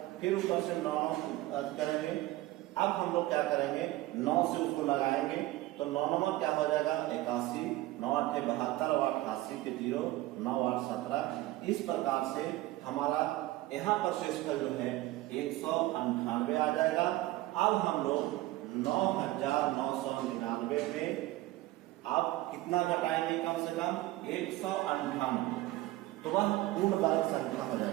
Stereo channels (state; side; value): quieter; left; 17.6 dB